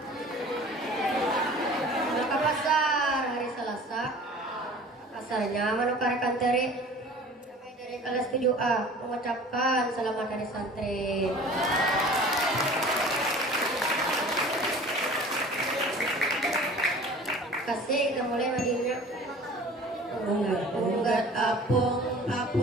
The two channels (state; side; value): normal; both; correlation 0.44